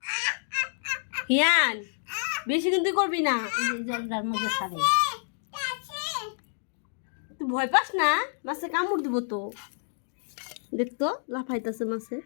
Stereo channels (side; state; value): right; silent; digital silence